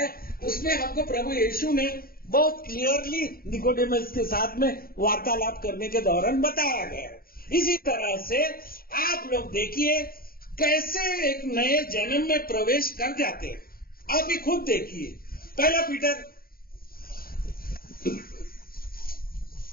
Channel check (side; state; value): right; late; 0.43 ms